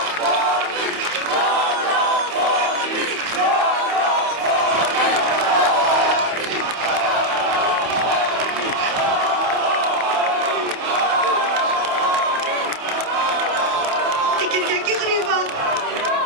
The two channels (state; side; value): late; left; 28 ms